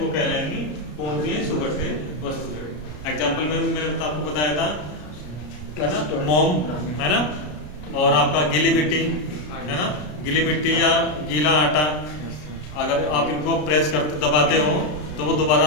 कहलाएंगी पूर्णतः सुगठ्य वस्तुएं। एग्जाम्पल में मैंने आपको बताया था है ना, मोम, है ना, और आपका गीली मिट्टी, है ना, गीली मिट्टी या गीला आटा, अगर आप इनको प्रेस करते दबाते हो तो वो दोबारा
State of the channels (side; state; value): right; late; 33 ms